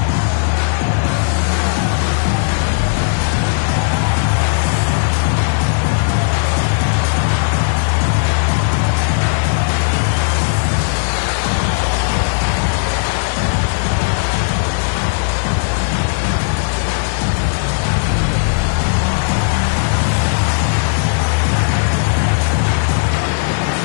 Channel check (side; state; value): right; silent; digital silence